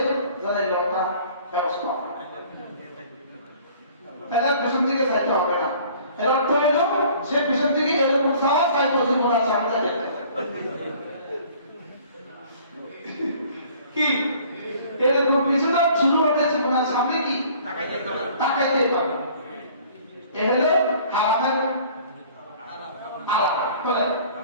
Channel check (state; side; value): inverted; both; correlation -0.52